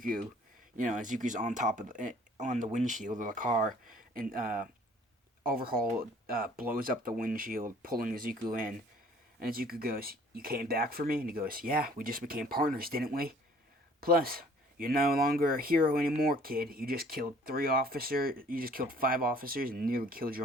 Izuku's on the windshield of the car, and Overhaul blows up the windshield, pulling Izuku in. And Izuku goes, "You came back for me?" And he goes, "Yeah, we just became partners, didn't we? Plus, you're no longer a hero anymore, kid. You just killed 5 officers, and nearly killed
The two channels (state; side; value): normal; both; correlation 0.55